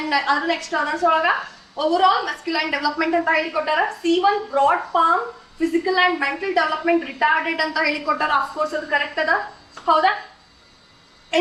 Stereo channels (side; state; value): both; identical; correlation 1.00